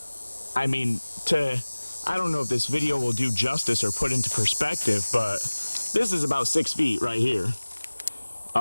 I mean, I don't know if this video will do justice or put into perspective, but this is about 6 feet right here.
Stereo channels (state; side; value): inverted; both; correlation -1.00